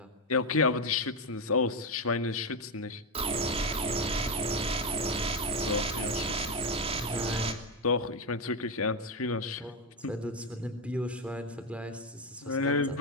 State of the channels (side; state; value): both; normal; correlation 0.09